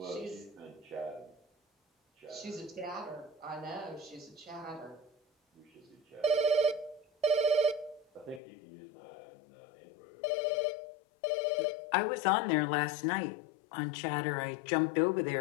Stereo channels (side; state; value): right; drops out; at 8.4 s